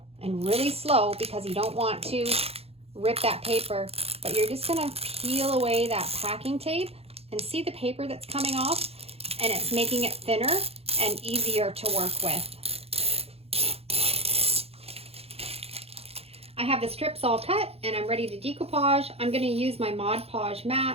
and really slow because you don't want to rip that paper. But you're just going to peel away that packing tape and see the paper that's coming off, and it's making it thinner and easier to work with. I have the strips all cut and I'm ready to decoupage. I'm going to use my Mod Podge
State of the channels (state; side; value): late; left; 0.29 ms